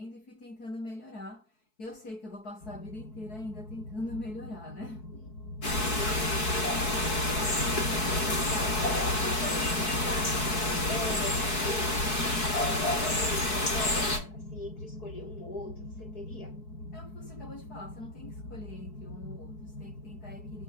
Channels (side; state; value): right; late; 4.6 ms